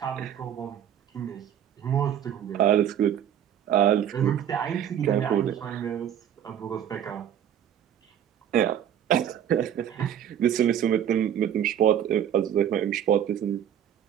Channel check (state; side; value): quieter; left; 9.8 dB